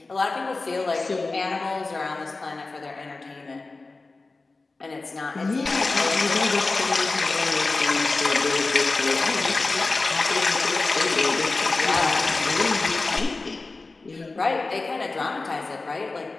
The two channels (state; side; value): quieter; right; 3.5 dB